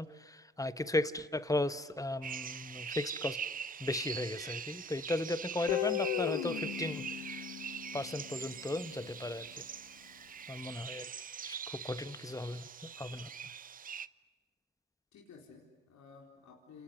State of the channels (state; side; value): normal; both; correlation 0.55